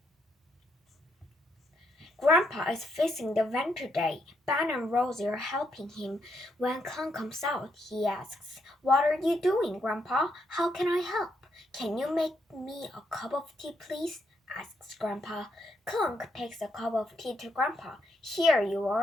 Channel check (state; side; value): normal; both; correlation 0.77